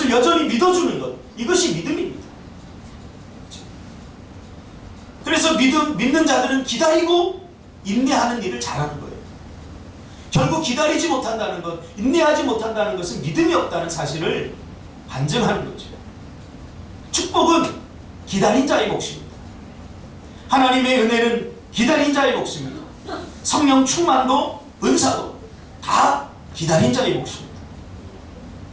여전히 믿어주는 것, 이것이 믿음입니다. 그래서 믿는 자들은 기다리고 인내하는 일을 잘하는 거예요. 결국 기다리지 못한다는 것, 인내하지 못한다는 것은 믿음이 없다는 사실을 반증하는 거죠. 축복은 기다린 자의 몫입니다. 하나님의 은혜는 기다린 자의 몫입니다. 성령 충만도 은사도 다 기다린 자의 몫입니다.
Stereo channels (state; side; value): identical; both; correlation 1.00